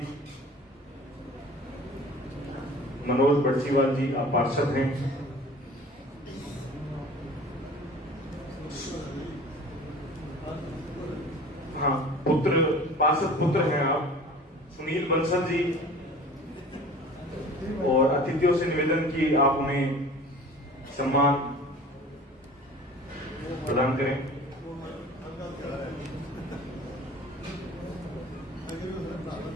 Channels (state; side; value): normal; both; correlation 0.43